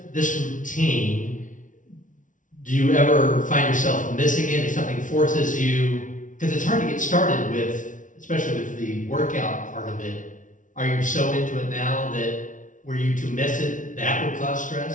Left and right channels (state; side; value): late; right; 0.37 ms